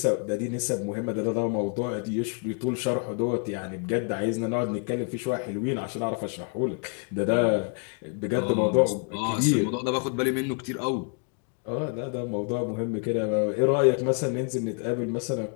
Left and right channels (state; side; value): quieter; right; 39.6 dB